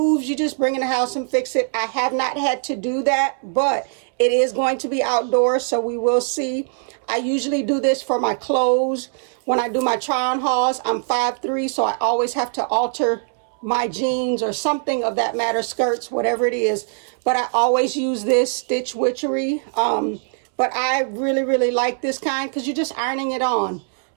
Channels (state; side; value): silent; left; 65 dB below the other